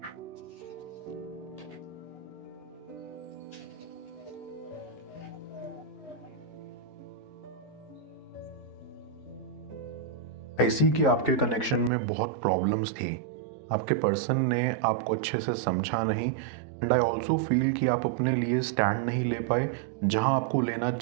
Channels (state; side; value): drops out; left; at 11.9 s